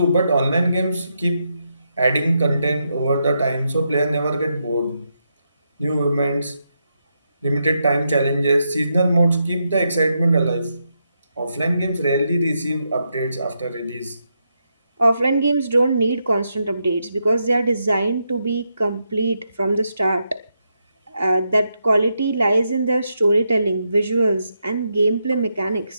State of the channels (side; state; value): both; inverted; correlation -0.82